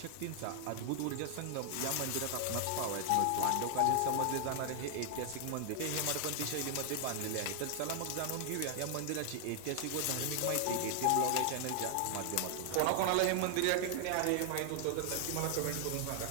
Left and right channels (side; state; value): both; different; correlation 0.00